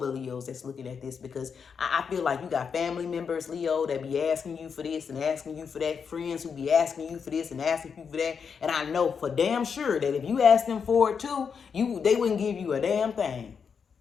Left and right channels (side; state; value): right; quieter; 6.3 dB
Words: Leos that's looking at this, because I feel like you got family members, Leo, that be asking you for this and asking you for that. Friends who be asking you for this and asking you for that. And I know for damn sure that if you ask them for it too, they wouldn't give you a damn thing.